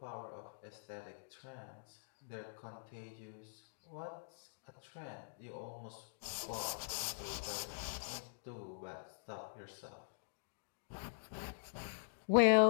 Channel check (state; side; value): silent; right; digital silence